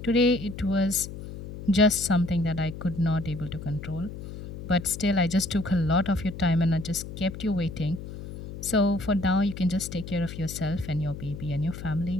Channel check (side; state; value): left; noise; hum, 11 dB below the sound